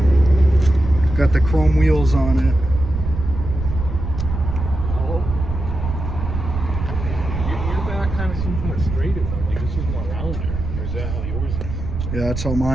Got the chrome wheels on it. Your back kind of seems more straight. Like this is more rounder. Or is that how yours is? Yeah, that's how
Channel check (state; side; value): noise; right; rumble, 5 dB below the sound